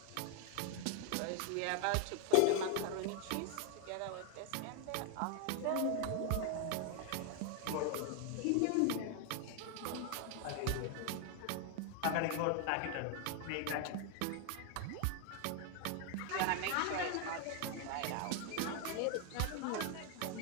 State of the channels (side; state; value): both; different; correlation 0.01